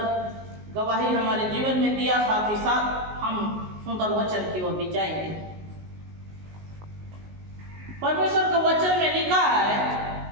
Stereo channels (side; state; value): left; late; 19 ms